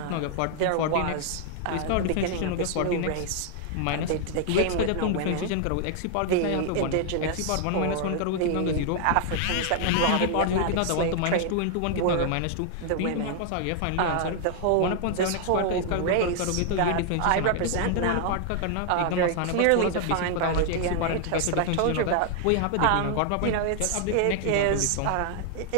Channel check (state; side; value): different; both; correlation 0.00